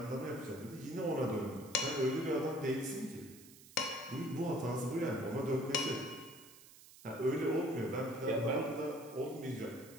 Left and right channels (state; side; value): noise; right; hiss, 20 dB below the sound